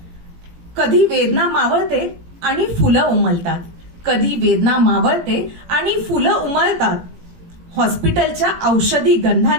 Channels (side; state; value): left; late; 17 ms